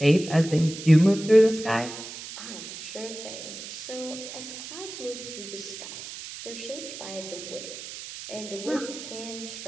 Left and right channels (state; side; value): noise; right; hiss, 11 dB below the sound